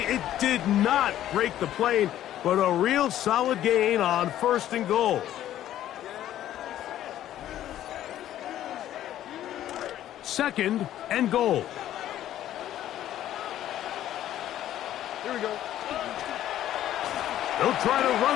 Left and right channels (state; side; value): quieter; right; 12.3 dB